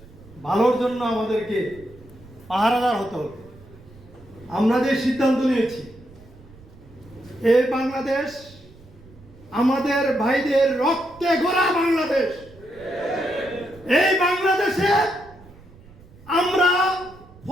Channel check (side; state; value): right; noise; rumble, 23 dB below the sound